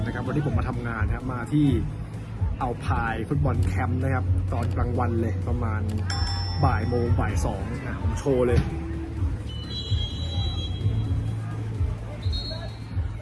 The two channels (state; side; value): identical; both; correlation 1.00